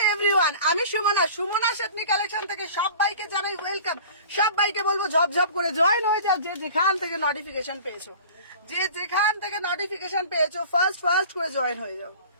everyone, আমি Sumana শেটনি collection থেকে সবাইকে জানাই ওয়েলকাম। সবাইকে বলবো ঝপঝপ করে জয়েন হয়ে যাও, যে যেখান থেকে নোটিফিকেশন পেয়েছো, ফার্স্ট করে জয়েন হয়ে যাও।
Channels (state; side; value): inverted; both; correlation -0.42